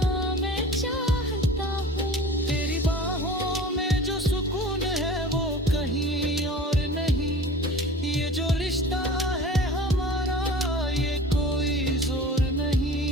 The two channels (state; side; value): normal; both; correlation 0.41